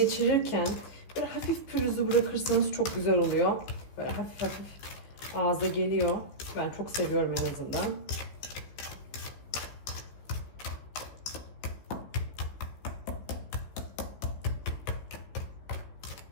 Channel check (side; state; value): right; late; 15 ms